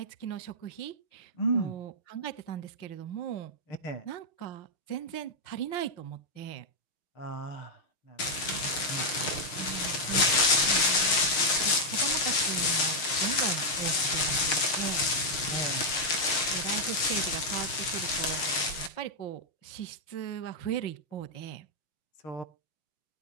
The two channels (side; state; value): right; late; 6.4 ms